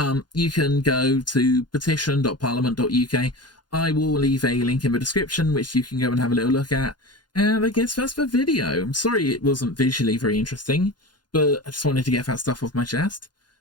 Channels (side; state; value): right; late; 0.70 ms